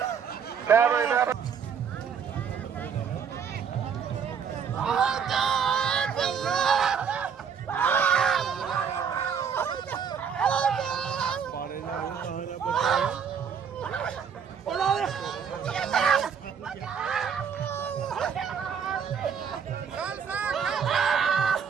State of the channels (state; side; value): quieter; left; 7.0 dB